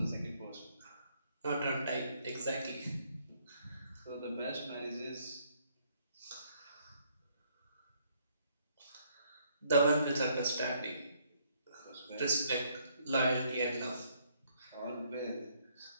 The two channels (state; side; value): inverted; both; correlation -0.68